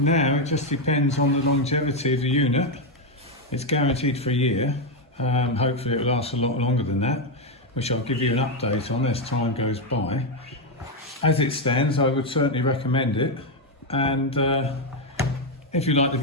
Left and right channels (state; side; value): normal; both; correlation 0.04